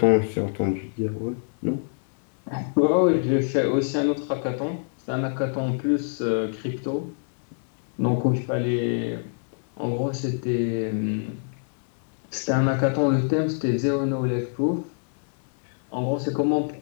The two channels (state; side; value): silent; right; digital silence